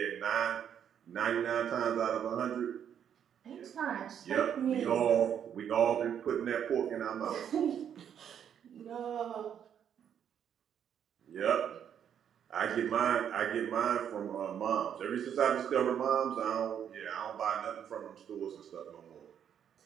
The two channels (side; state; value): left; quieter; 8.8 dB